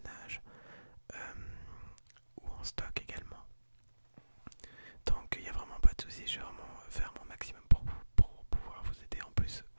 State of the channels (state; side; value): inverted; both; correlation -1.00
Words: euh, ou en stock également. Donc il n'y a vraiment pas de souci, je vais vraiment faire mon maximum pour pouvoir vous aider. En plus,